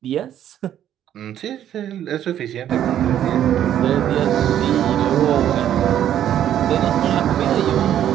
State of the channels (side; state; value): left; quieter; 10.9 dB